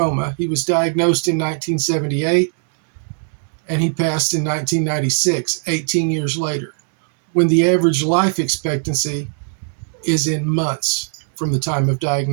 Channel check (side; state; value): left; silent; digital silence